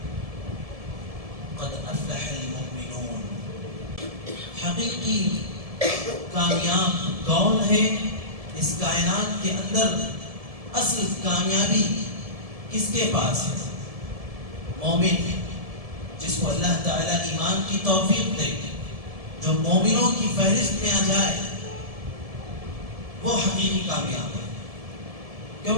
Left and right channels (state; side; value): late; left; 1.7 ms